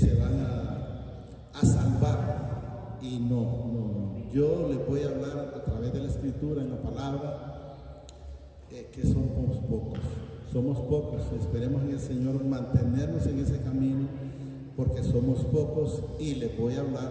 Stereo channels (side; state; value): both; identical; correlation 1.00